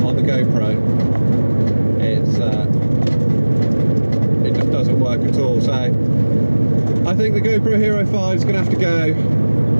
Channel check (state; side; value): inverted; both; correlation -1.00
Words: the GoPro, it just doesn't work at all. So I think the GoPro Hero 5 is going to have to go.